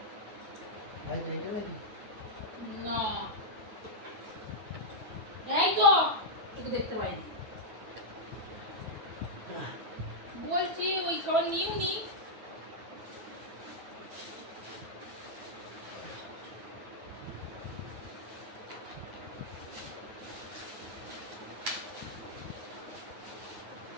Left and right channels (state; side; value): late; left; 9.0 ms